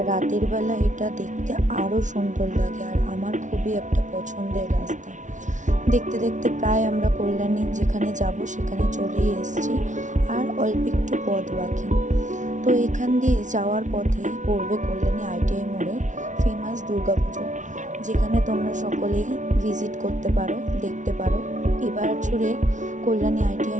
রাতের বেলা এটা দেখতে আরও সুন্দর লাগে, আর আমার খুবই একটা পছন্দের রাস্তা। দেখতে দেখতে প্রায় আমরা কল্যাণী যেখানে যাব সেখানে চলেই এসেছি, আর অল্প একটু পথ বাকি। তো এখান দিয়ে যাওয়ার পথে পড়বে কল্যাণী আইটিআই মোড়ে ফেমাস দুর্গাপুজো, যেখানে তোমরা সকলেই ভিজিট করতে পারো, দেখতে পারো। এবার ছুড়ে কল্যাণী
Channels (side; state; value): left; late; 0.37 ms